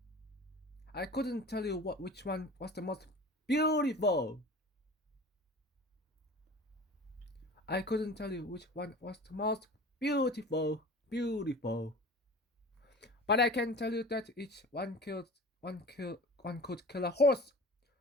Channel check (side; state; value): both; normal; correlation 0.39